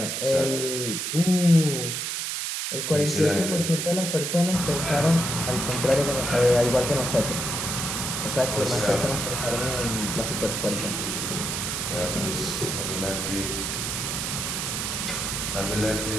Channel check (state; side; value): noise; right; hiss, 2 dB below the sound